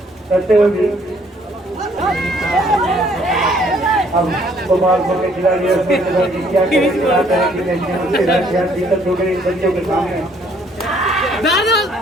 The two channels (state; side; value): normal; both; correlation 0.63